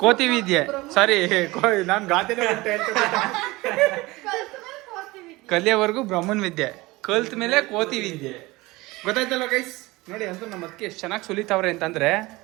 ಕೋತಿ ವಿದ್ಯೆ. ಸಾರಿ ನಾನು ಗಾದೆನೇ ಕಲಿಯೋವರೆಗೂ ಬ್ರಹ್ಮನ್ ವಿದ್ಯೆ, ಕಲ್ತ ಮೇಲೆ ಕೋತಿ ವಿದ್ಯೆ. ಗೊತ್ತಾಯ್ತಲ್ಲ ಗೈಸ್. ನೋಡಿ ಅಂತೂ ನಮ್ಮ ಅದಕ್ಕೆ ಎಷ್ಟು ಚೆನ್ನಾಗಿ ಸುಲಿತಾವ್ರೆ ಅಂತಂದ್ರೆ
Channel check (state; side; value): quieter; left; 21.3 dB